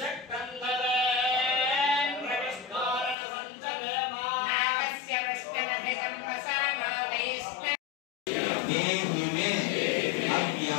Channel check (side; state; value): right; drops out; at 3.2 s